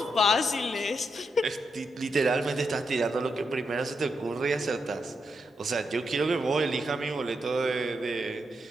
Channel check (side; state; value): both; normal; correlation 0.83